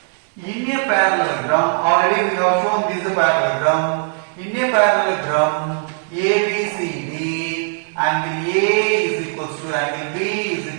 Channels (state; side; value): silent; left; 56 dB below the other